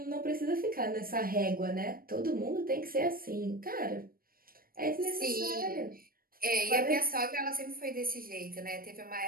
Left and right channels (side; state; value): left; late; 0.42 ms